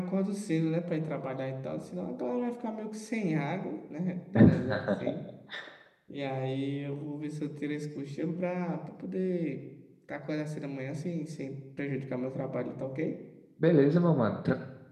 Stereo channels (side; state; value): both; identical; correlation 1.00